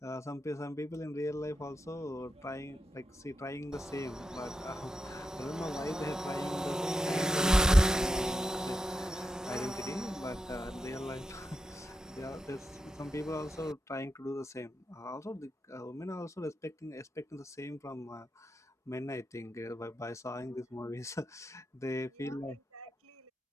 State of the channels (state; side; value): normal; both; correlation 0.87